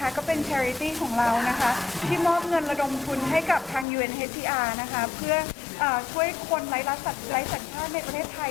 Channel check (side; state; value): right; drops out; at 3.9 s